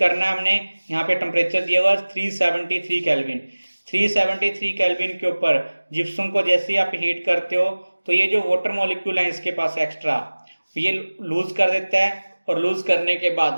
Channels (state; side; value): inverted; both; correlation -1.00